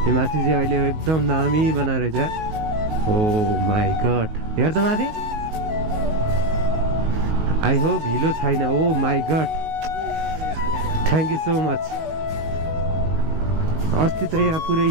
यो माथि चाहिँ अहिले एकदम दामी बनाएर रहेछ ओ माई गड हेर त माथि आई होप हिलो छैन oh my God thank you so much अस्ति त यहाँ पुरै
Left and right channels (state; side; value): late; left; 19 ms